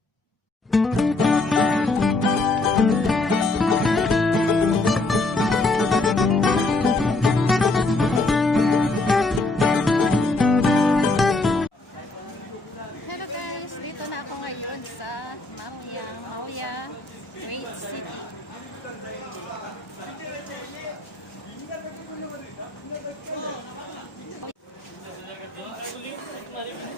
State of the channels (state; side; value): quieter; right; 3.1 dB